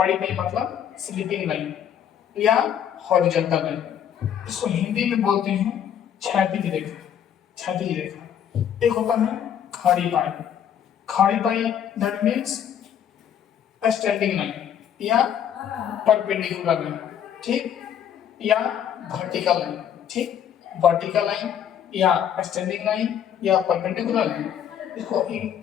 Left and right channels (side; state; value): right; quieter; 9.2 dB